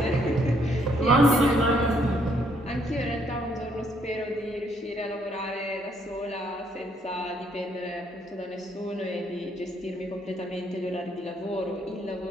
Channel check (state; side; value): normal; both; correlation 0.70